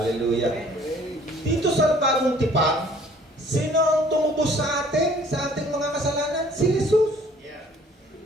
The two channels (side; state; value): both; normal; correlation 0.56